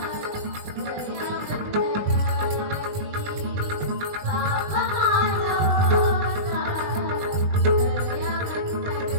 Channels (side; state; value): left; late; 20 ms